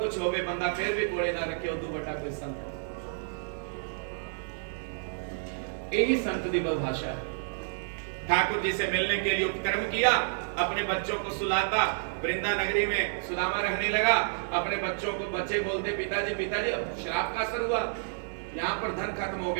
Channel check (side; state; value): left; silent; 58 dB below the other